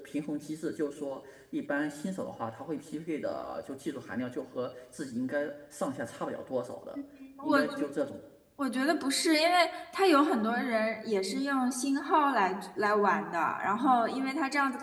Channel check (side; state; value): both; identical; correlation 1.00